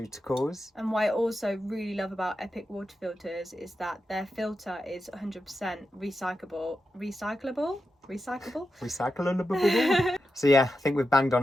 And what I also really love about Epic water filters is that their filter is 100% recyclable. So yeah, I think we've banged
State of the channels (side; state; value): both; normal; correlation 0.89